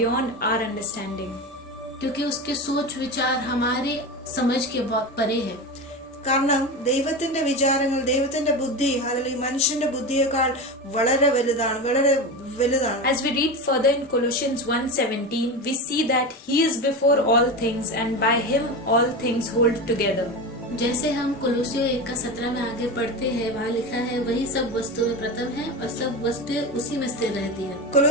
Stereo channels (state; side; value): normal; both; correlation 0.23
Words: our understanding. क्योंकि उसके सोच विचार हमारे समझ के बहुत परे है. കാരണം ദൈവത്തിന്റെ വിചാരങ്ങൾ, ദൈവത്തിന്റെ ബുദ്ധി അല്ലെങ്കിൽ മനുഷ്യന്റെ ബുദ്ധിയേക്കാൾ വളരെ വലുതാണ്. As we read further in Colossians 1:17, we see that he is before all things and by him all things hold together. जैसे हम कोलोसियों 1:17 में आगे पढ़ते हैं, वहाँ लिखा है, वही सब वस्तुएं प्रथम है और सब वस्तुएं उसी में स्थिर रहती है.